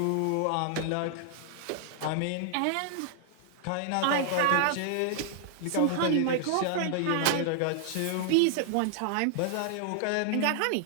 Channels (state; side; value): different; both; correlation 0.00